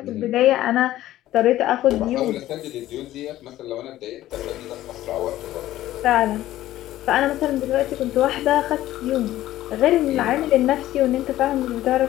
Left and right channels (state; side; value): quieter; right; 14.4 dB